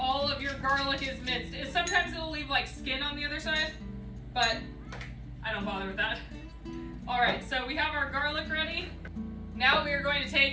of your garlic is minced. Sometimes it'll leave like skin on the other side, but I don't bother with that. All right, so we have our garlic ready. Now we are going to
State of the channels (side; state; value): both; identical; correlation 1.00